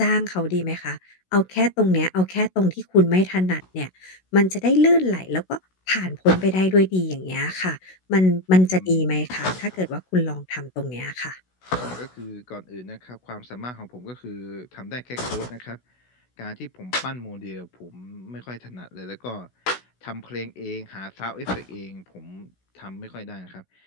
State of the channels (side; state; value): right; late; 16 ms